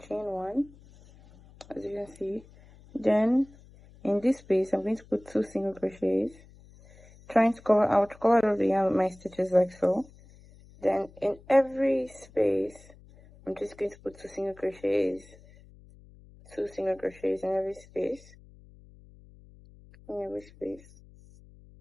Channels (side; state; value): left; noise; hum, 24 dB below the sound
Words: 1, as you can see. Then in this space, I'm going to put 2 single crochets, trying to cover out all the yarn with my stitches like so. Then in every space, I'm just going to put 2 single crochets in every space,